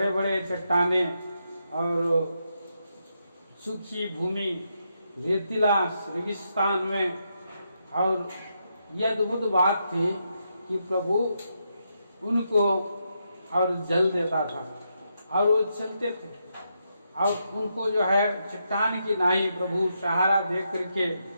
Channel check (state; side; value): inverted; both; correlation -0.82